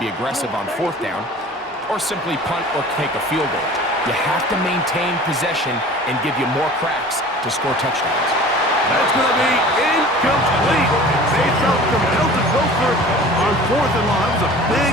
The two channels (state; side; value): normal; both; correlation 0.43